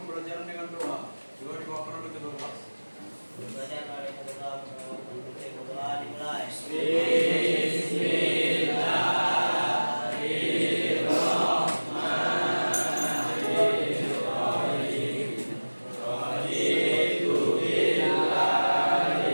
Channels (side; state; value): both; inverted; correlation -1.00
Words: dengan doa. Doa dibawakan oleh ketua kelas. Pembelajaran oleh ketua doa dimulai.